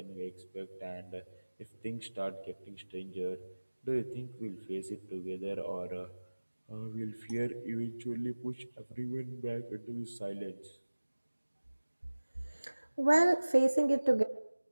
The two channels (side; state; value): both; inverted; correlation -1.00